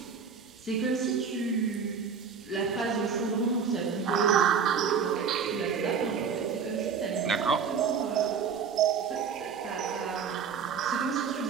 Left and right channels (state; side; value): quieter; left; 6.4 dB